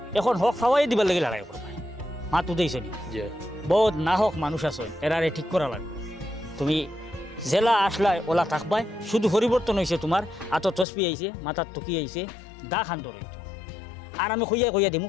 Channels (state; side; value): drops out; right; at 10.9 s